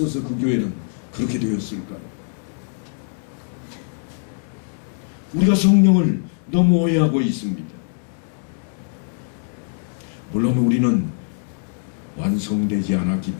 그 교회는 그렇게 되었을까요? 우리가 성령을 너무 오해하고 있습니다. 물론 우리는 완성되지 않았기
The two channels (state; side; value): silent; right; 64 dB below the other